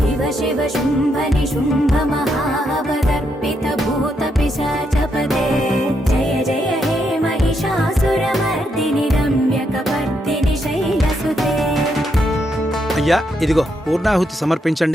శివ శుంభ నిశుంభ మహావదర్పిత భూత పిశాచపదే జయ జయ హే మహిషాసురమర్దిని రమ్యకపర్దిని శైలసుతే. అయ్యా, ఇదిగో పూర్ణాహుతి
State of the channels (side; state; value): both; normal; correlation 0.78